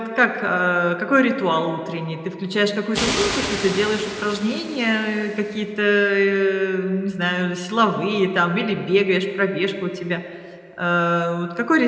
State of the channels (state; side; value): identical; both; correlation 1.00